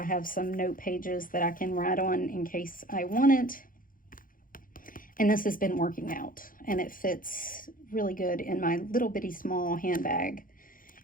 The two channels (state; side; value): late; right; 0.40 ms